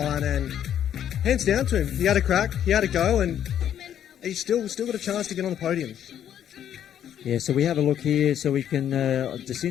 and hands down to him. He had a crack, he had a go, and he's still got a chance to get on the podium. Yeah, so we have a look here. So we can,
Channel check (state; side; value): quieter; right; 10.0 dB